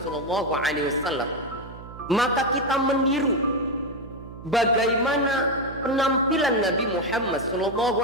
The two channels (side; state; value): right; noise; hum, 15 dB below the sound